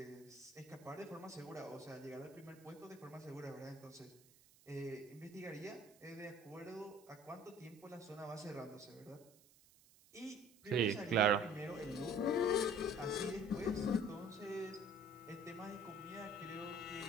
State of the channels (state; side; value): noise; right; hiss, 26 dB below the sound